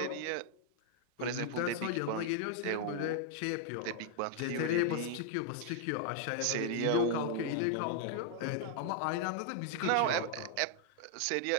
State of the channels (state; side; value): different; both; correlation -0.01